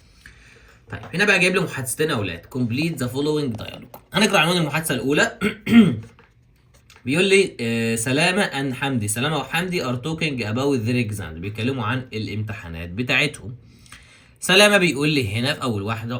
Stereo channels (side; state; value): both; identical; correlation 1.00